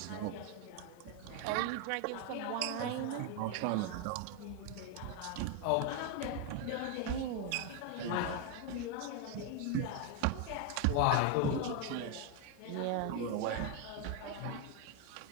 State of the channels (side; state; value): both; different; correlation 0.01